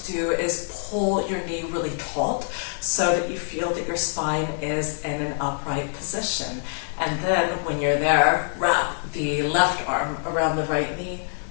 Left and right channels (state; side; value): silent; right; digital silence